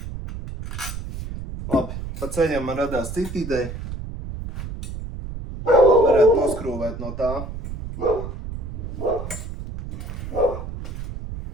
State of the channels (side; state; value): right; noise; rumble, 8 dB below the sound